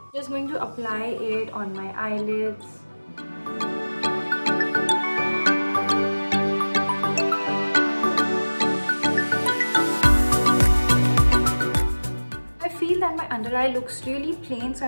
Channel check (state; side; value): inverted; both; correlation -1.00